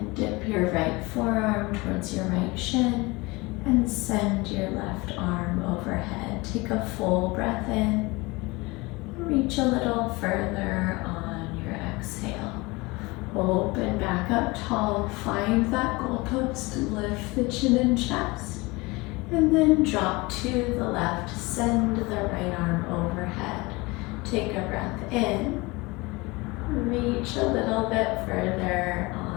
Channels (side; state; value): right; quieter; 23.9 dB